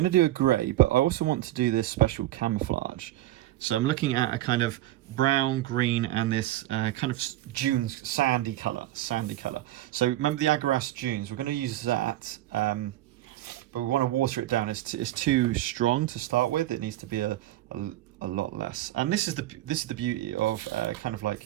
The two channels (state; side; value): quieter; left; 15.2 dB